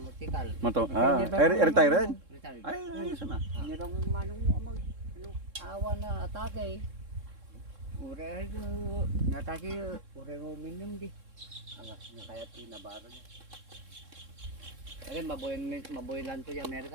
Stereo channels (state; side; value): late; left; 3.7 ms